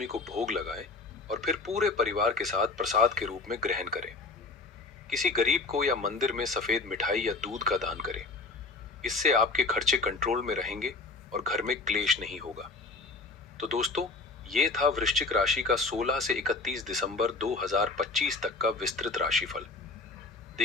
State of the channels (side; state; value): right; quieter; 3.6 dB